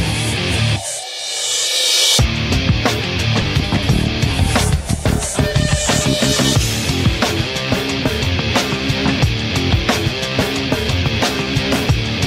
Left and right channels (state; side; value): identical; both; correlation 1.00